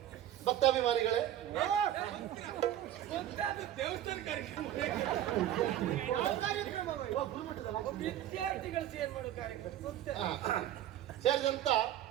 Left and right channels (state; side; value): quieter; left; 11.9 dB